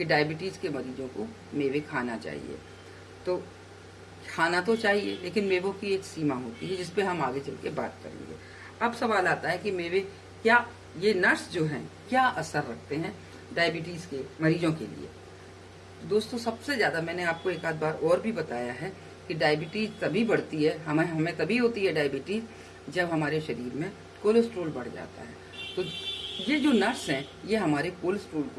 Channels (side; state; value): both; identical; correlation 1.00